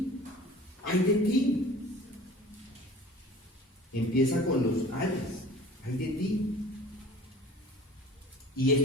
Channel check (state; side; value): normal; both; correlation 0.44